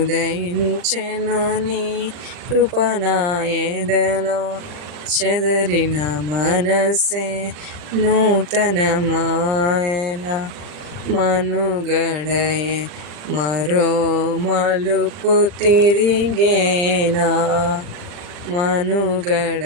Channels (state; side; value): late; left; 39 ms